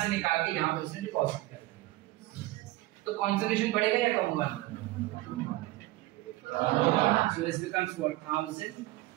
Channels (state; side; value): quieter; left; 18.3 dB